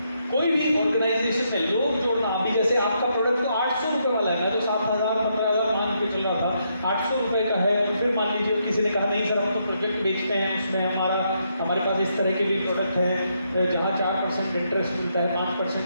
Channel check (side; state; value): both; inverted; correlation -0.78